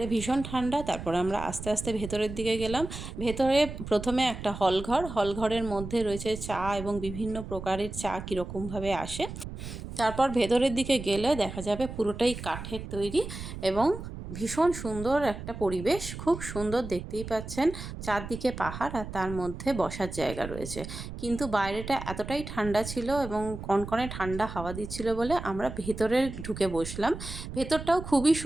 ভীষণ ঠান্ডা। তারপর আমরা আস্তে আস্তে ভেতরের দিকে গেলাম। ভেতরে প্রথমে একটা হলঘরের মধ্যে রয়েছে চা এবং বিভিন্ন প্রকারের চা কীরকমভাবে আসে। তারপর ভেতরের দিকে গেলে দেখা যাবে পুরোটাই কাঠের তৈরি এবং ভীষণ সুন্দর একটা পরিবেশ। খুব সুন্দর, দেখতেই পাচ্ছেন চারদিকে পাহাড় আর তার মধ্যে বসার জায়গা রয়েছে। কিন্তু বাইরেটা এতটাই ঠান্ডা ছিল এবং কনকনে ঠান্ডা হাওয়া দিচ্ছিল বলে আমরা ভেতরে ঢুকে বসলাম। ভেতরটাও খুবই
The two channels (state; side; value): noise; right; rumble, 9 dB below the sound